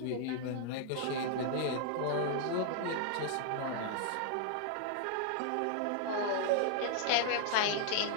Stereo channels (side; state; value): both; different; correlation 0.00